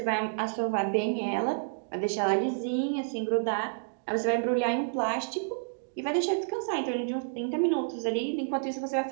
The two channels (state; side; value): silent; left; digital silence